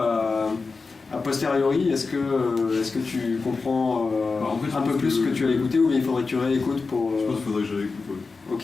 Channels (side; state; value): right; quieter; 4.3 dB